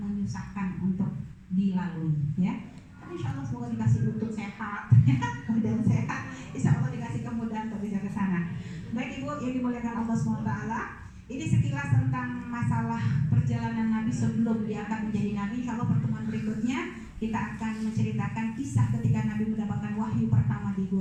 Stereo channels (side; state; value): both; identical; correlation 1.00